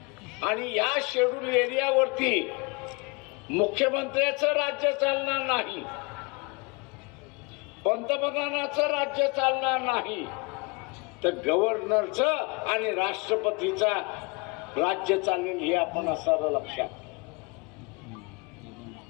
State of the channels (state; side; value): quieter; right; 29.0 dB